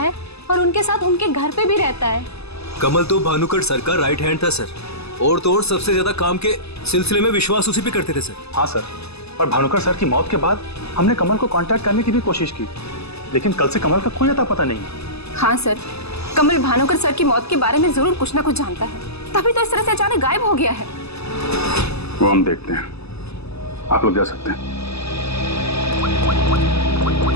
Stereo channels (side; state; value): right; late; 0.79 ms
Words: और उनके साथ उनके घर पे भी रहता है। कमल तो भानुकर सर का राइट हैंड था सर, और तो और सबसे ज्यादा काम के सिलसिले में विश्वास उसी पे करते थे सर। हाँ सर, और भानुकर सर की मौत के बाद हमने कमल को कांटेक्ट करने की भी कोशिश की, लेकिन कल से कमल का कोई अता पता नहीं। हाँ सर, कमल भानुकर सर की मौत के बारे में जरूर कुछ ना कुछ जानता है, तभी तो इस तरह से अचानक गायब हो गया है। वो हम देखते हैं, आप लोग जा सकते हैं।